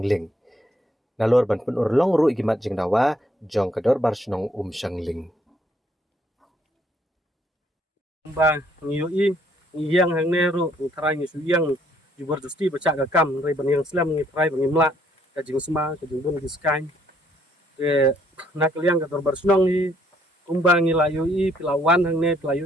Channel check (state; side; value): normal; both; correlation 0.67